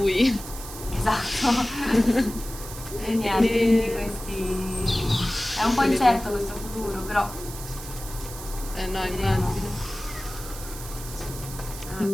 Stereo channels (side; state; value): right; noise; hiss, 12 dB below the sound